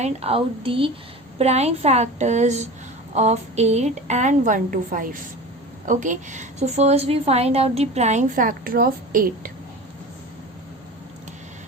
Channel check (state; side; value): normal; both; correlation 0.33